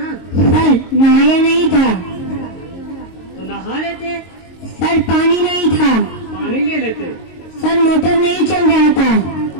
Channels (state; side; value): late; right; 22 ms